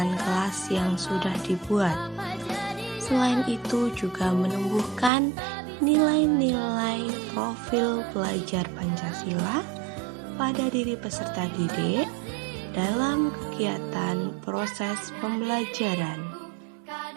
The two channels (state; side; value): drops out; left; at 5.1 s